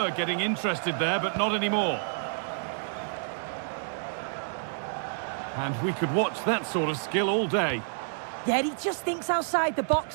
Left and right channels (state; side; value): silent; left; 59 dB below the other